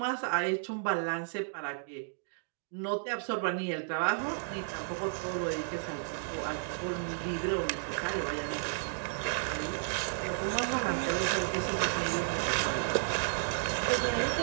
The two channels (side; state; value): left; silent; digital silence